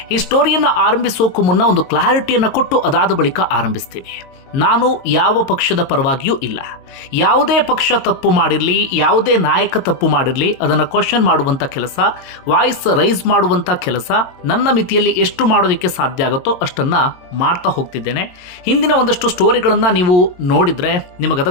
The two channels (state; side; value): late; right; 22 ms